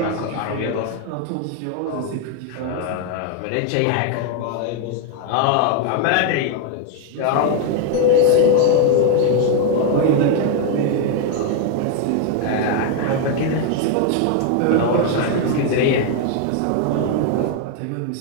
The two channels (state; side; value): different; both; correlation 0.01